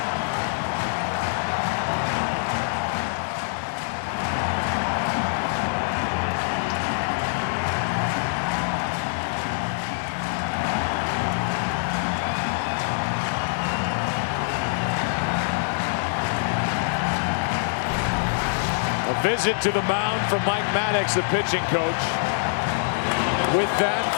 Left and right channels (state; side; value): silent; right; 59 dB below the other